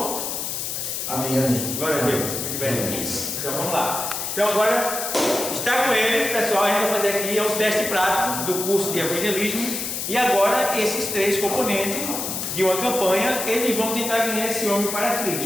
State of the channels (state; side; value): noise; left; hiss, 4 dB below the sound